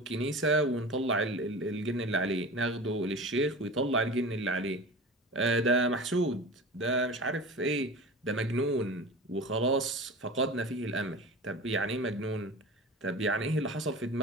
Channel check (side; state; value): both; normal; correlation 0.33